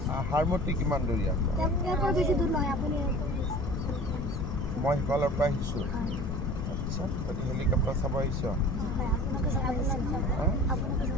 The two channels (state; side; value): noise; left; rumble, 2 dB below the sound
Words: হাৰমতি কিমান দূৰ ইয়াত মই সিফালৰ পৰা আহিছোঁ আচ্ছা তহঁতি হেলিকপ্টাৰ চাব আহিছ